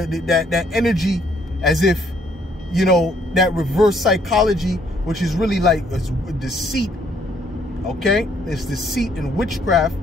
energy as if, you know, that reverse psychology, which is really like deceit, okay? It's deceit and witchcraft.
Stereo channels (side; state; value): both; normal; correlation 0.67